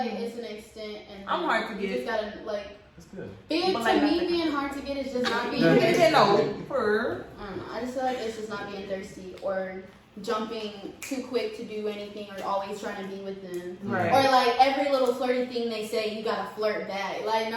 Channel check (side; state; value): both; identical; correlation 1.00